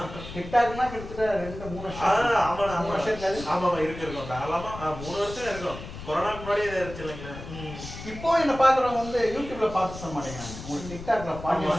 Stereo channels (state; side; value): noise; left; rumble, 12 dB below the sound